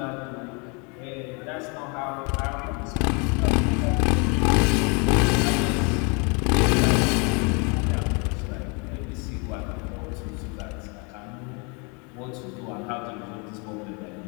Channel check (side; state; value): right; quieter; 32.7 dB